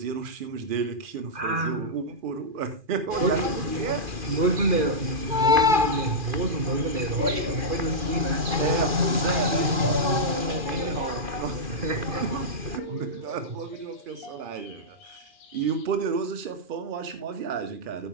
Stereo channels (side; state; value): left; late; 2.4 ms